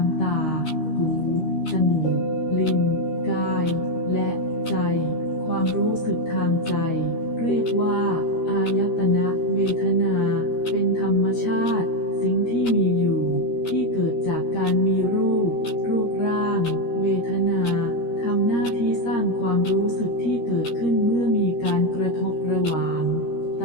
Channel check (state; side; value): late; right; 13 ms